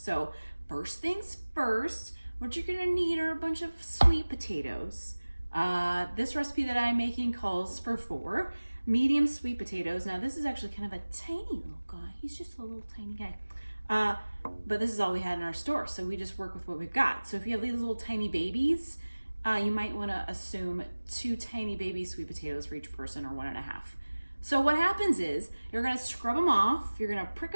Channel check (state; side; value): inverted; both; correlation -1.00